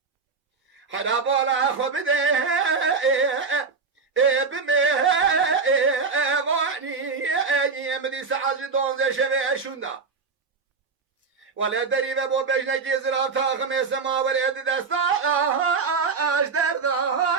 حدا بالا خو بده بمه واني مدي سعاجي دونزي شبه شوندا ولا دريبه بو بجنكي زراف تاخم سما وليد دستا اشدر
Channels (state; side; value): quieter; left; 4.9 dB